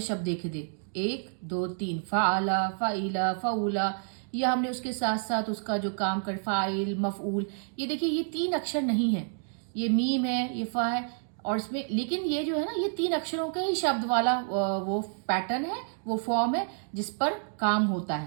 शब्द देखे थे, 1 2 3 फ़ाअला फ़ाइला फ़ऊला। या हमने उसके साथ साथ उसका जो काम कर फ़ाइल मफ़ऊल, ये देखिए ये 3 अक्षर नहीं है, ये मीम है, ये फ़ा है और इसमें, लेकिन ये जो है ना ये 3 अक्षरों के ही शब्द वाला वो पैटर्न है, वो फॉर्म है जिस पर काम होता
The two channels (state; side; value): silent; left; 58 dB below the other